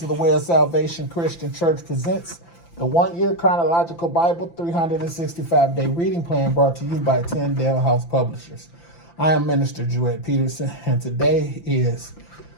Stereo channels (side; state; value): right; late; 5.9 ms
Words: the Way of Salvation Christian Church presents the 1-year Chronological Bible 365-day reading plan brought to you by Tyndale House Publishers. I am Minister Jewett Peterson and today is